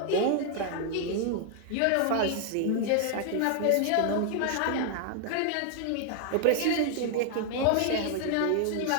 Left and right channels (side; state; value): both; different; correlation 0.00